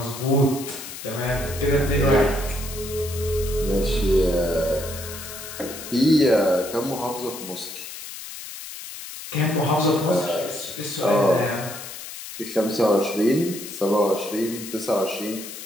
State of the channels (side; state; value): left; noise; hiss, 11 dB below the sound